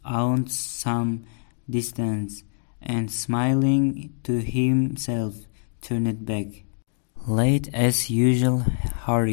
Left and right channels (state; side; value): silent; right; digital silence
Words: aunt some distance, and smiling to himself, turned back. Late as usual,